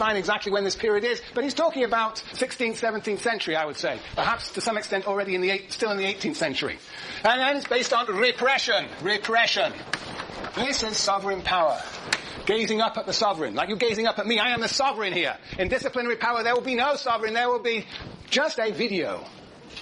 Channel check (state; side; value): identical; both; correlation 1.00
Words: exactly when this period is, but he's talking about 16th, 17th century, I would say. Perhaps to some extent already still in the 18th century. And then it's based on repression. This is sovereign power. Gazing up at the sovereign. Like you gazing up at me, I am the sovereign here. In disciplinary power there will be no sovereign, there will be just a video